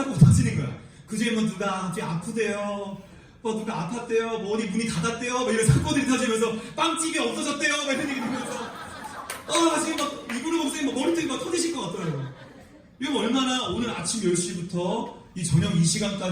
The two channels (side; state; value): both; identical; correlation 1.00